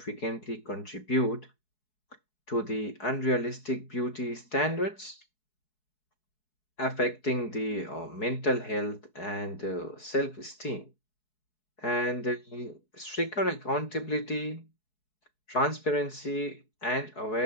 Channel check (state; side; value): late; right; 4.7 ms